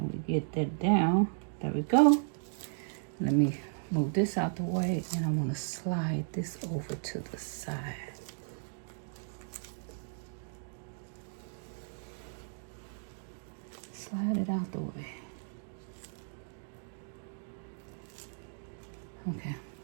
we get that down? There we go. Let me move this out the way, and I want to slide this over to the side. Slide it out the way. Okay,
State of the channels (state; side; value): silent; left; digital silence